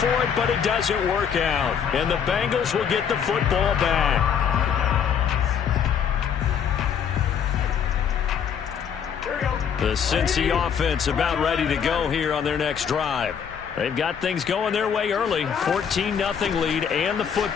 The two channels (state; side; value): quieter; right; 7.7 dB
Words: it, but it doesn't work out. And the Bengals will get the football back. The Cincy offense about ready to go here on their next drive. They've got things going their way early. 14-0 lead and the